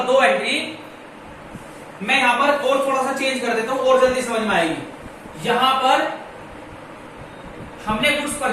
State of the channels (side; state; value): both; identical; correlation 1.00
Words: 2 एंट्री, मैं यहां पर और थोड़ा सा चेंज कर देता हूं और जल्दी समझ में आएगी। यहां पर हमने गुड्स